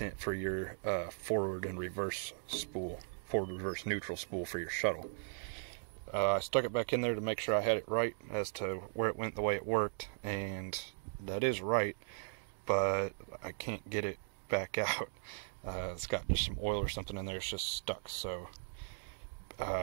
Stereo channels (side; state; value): left; silent; digital silence